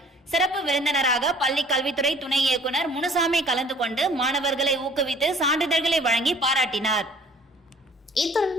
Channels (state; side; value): normal; both; correlation 0.53